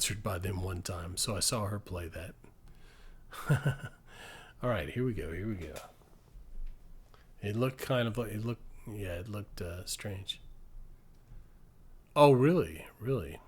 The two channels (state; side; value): identical; both; correlation 1.00